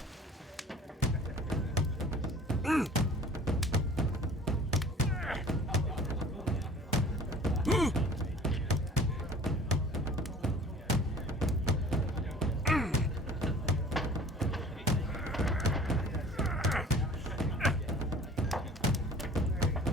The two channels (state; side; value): normal; both; correlation 0.47